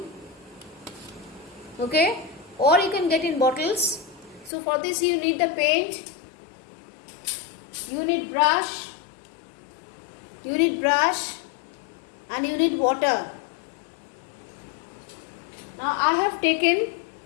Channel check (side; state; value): right; drops out; at 4.5 s